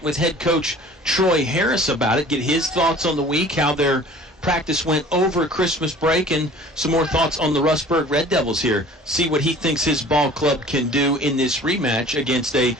with head coach Troy Harris about it, get his thoughts on the week, how their practice went over Christmas break, and some more thoughts on the Rustburg Red Devils here. See what he thinks his ball club can do in this rematch against a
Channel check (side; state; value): both; normal; correlation 0.46